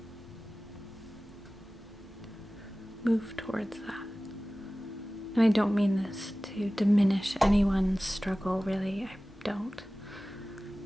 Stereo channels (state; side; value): normal; both; correlation 0.97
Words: Move towards that. And I don't mean this to diminish anyone's struggle, really, I don't.